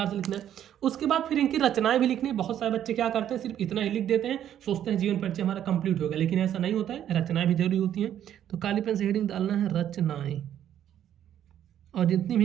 से लिखना है। उसके बाद फिर इनकी रचनाएं भी लिखनी है। बहुत सारे बच्चे क्या करते हैं, सिर्फ इतना ही लिख देते हैं, सोचते हैं जीवन परिचय हमारा कंप्लीट हो गया, लेकिन ऐसा नहीं होता है, रचनाएं भी जरूरी होती हैं। तो काली पेन से हेडिंग डालना है रचनाएं, और जितनी भी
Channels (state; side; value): quieter; left; 10.6 dB